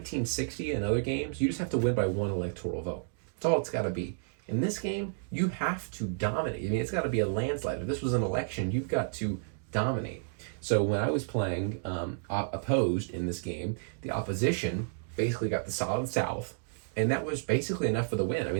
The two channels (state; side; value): silent; left; digital silence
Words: and other games, you just have to win by 1 electoral vote. That's all it's got to be. In this game, you have to dominate. I mean, it's got to be a landslide. If this was an election, you've got to dominate. So when I was playing opposed in this game, the opposition basically got the solid South, and that was basically enough for the win. I